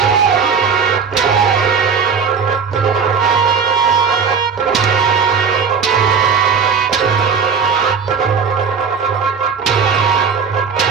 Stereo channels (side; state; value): left; quieter; 6.1 dB